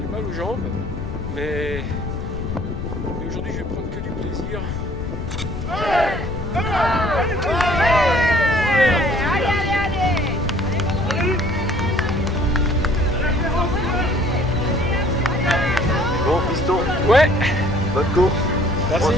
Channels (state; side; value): noise; left; rumble, 7 dB below the sound